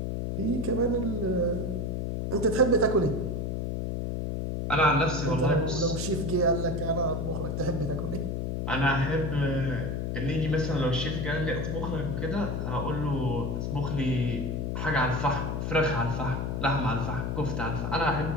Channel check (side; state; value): left; noise; hum, 1 dB below the sound